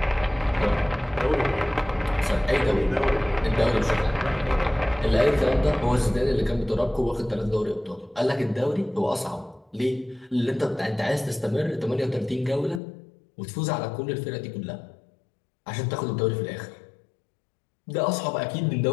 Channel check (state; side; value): drops out; right; at 12.8 s